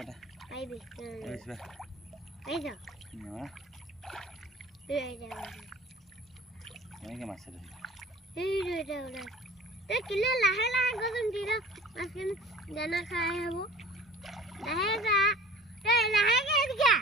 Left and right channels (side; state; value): both; normal; correlation 0.44